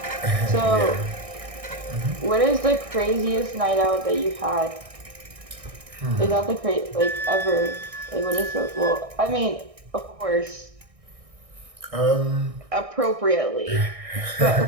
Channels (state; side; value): late; left; 1.6 ms